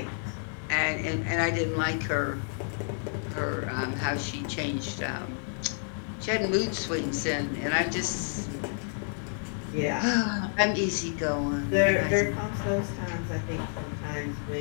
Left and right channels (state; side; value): silent; right; 57 dB below the other